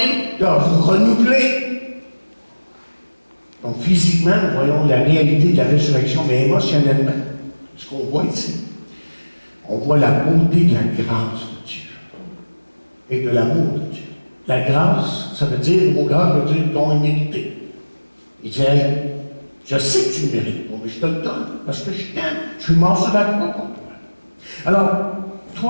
de vous renouveler. Donc physiquement, nous voyons la réalité de la résurrection, mais émotionnellement, ce qu'on voit ici, on voit la beauté de la grâce de Dieu et de l'amour de Dieu. La grâce, ça veut dire, le mot grâce veut dire don immérité. Il dit, hey, je sais que tu le mérites, mais je te le donne parce que je t'aime. Je suis mort sur la croix pour toi. Alors,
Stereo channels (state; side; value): inverted; both; correlation -1.00